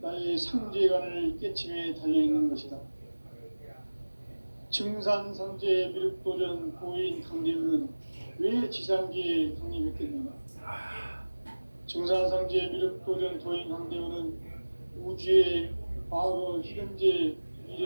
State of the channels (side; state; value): both; inverted; correlation -1.00